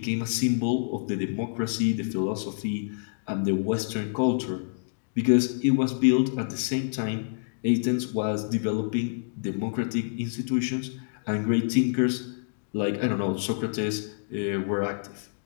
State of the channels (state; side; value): silent; right; digital silence